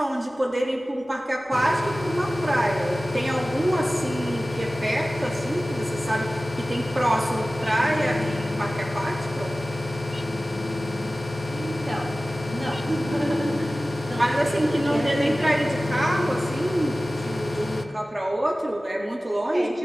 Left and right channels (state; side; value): normal; both; correlation 0.96